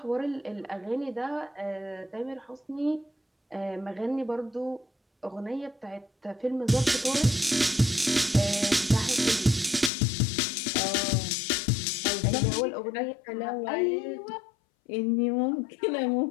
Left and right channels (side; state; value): right; drops out; at 9.9 s